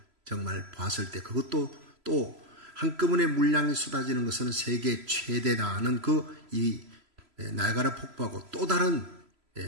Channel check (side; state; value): left; late; 3.0 ms